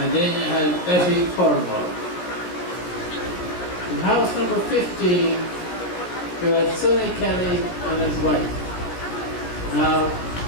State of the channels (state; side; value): late; right; 17 ms